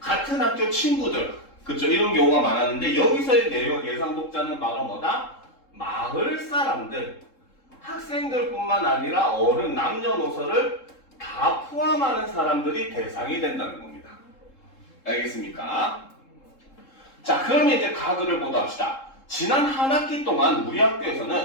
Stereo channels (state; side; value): late; right; 3.7 ms